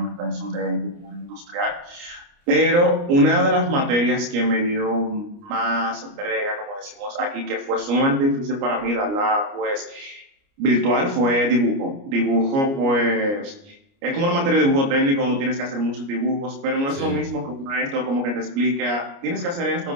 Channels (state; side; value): late; left; 29 ms